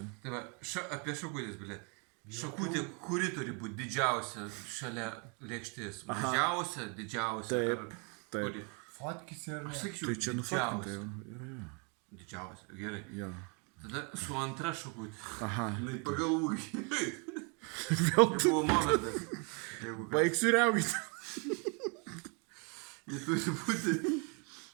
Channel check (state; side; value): quieter; left; 35.4 dB